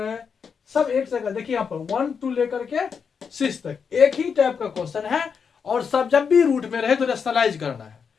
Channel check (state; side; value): quieter; right; 6.3 dB